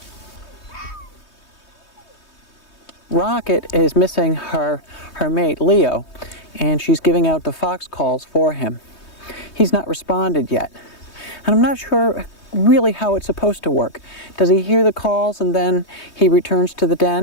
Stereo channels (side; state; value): right; late; 3.2 ms